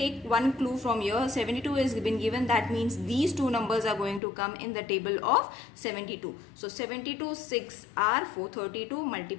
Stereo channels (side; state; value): right; drops out; at 4.2 s